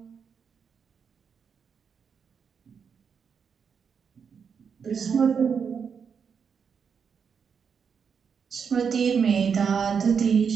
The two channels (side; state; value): left; quieter; 6.5 dB